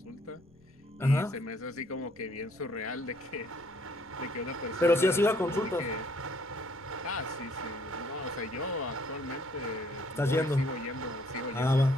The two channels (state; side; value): noise; left; rumble, 28 dB below the sound